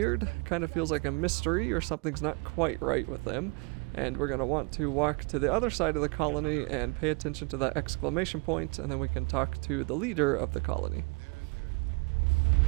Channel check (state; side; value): quieter; left; 31.6 dB